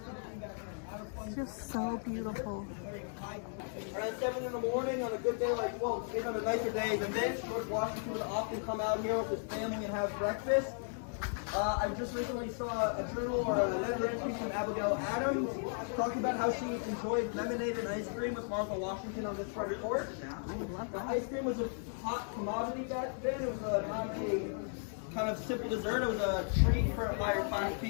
It's just so beautiful. Around 7 in the morning on a good day like, well, even on a nicer day than this, George Washington would often come out here with his family and have breakfast. I just recently saw a journal or a letter entry from Abigail Adams talking about how she enjoyed lemonade and ice cream with Martha Washington on this front porch. The ice cream was a hot commodity back then. It was not a kind of simple dessert. It was a treat for higher class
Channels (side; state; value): right; silent; 54 dB below the other